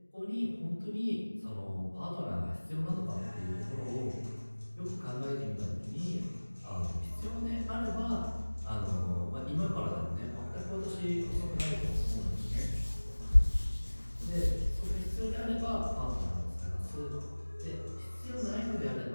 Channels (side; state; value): both; inverted; correlation -1.00